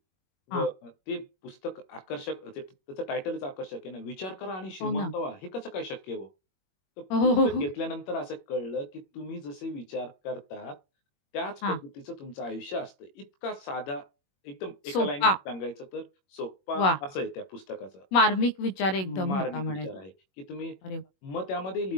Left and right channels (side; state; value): right; late; 21 ms